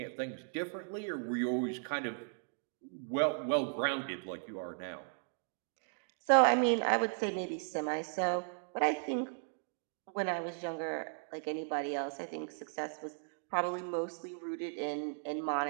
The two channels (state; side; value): silent; left; digital silence